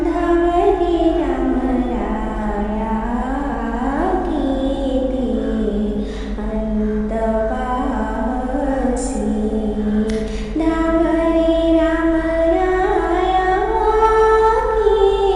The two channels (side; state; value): both; identical; correlation 1.00